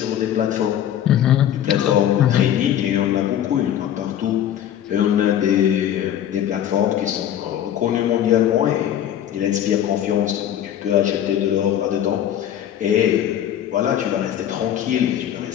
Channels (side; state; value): right; quieter; 10.8 dB